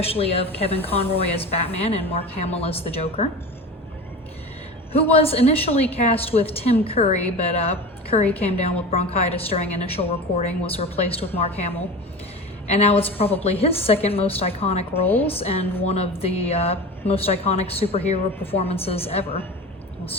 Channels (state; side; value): normal; both; correlation 0.31